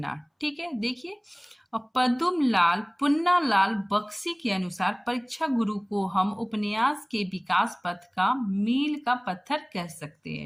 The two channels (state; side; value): identical; both; correlation 1.00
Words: ठीक है। देखिए पद्मलाल पुन्नालाल बख्शी के अनुसार परीक्षा गुरु को हम उपन्यास के विकास पथ का मील का पत्थर कह सकते